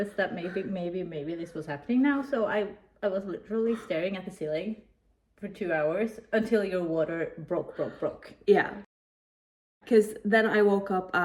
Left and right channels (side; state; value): both; identical; correlation 1.00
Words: that maybe this was happening now. So I was literally staring at the ceiling for 2 hours until your water broke. Yeah. Because then I woke up